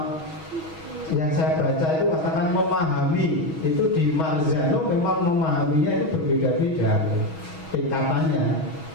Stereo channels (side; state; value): right; late; 6.3 ms